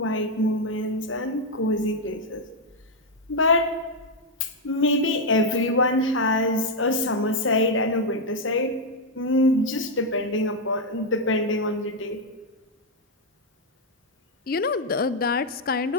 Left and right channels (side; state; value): both; normal; correlation 0.01